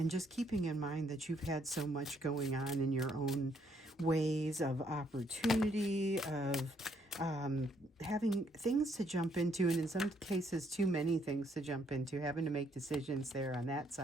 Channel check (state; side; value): normal; both; correlation 0.70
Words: just keeping in mind that you've had so much going on in your own ways of opportunity, of having things to jump into, and in some cases too many things to jump into, having to make decisions there on that